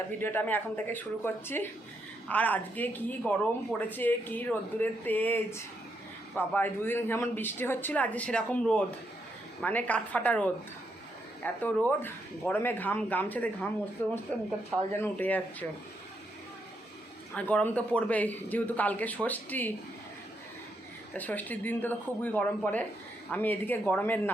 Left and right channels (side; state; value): both; normal; correlation 0.79